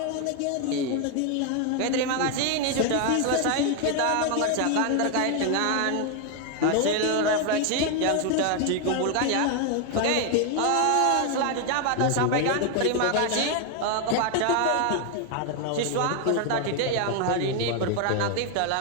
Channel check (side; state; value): both; different; correlation 0.01